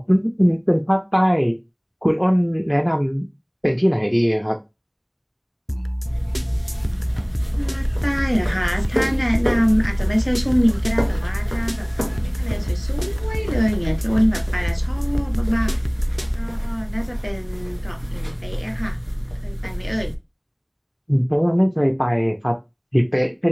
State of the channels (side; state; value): both; identical; correlation 1.00